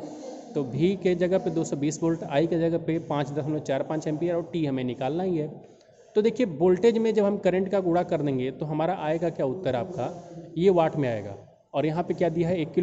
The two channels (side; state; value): both; identical; correlation 1.00